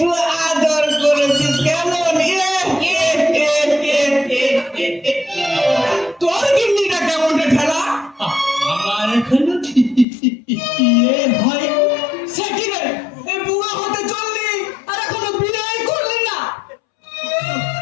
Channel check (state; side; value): drops out; right; at 10.1 s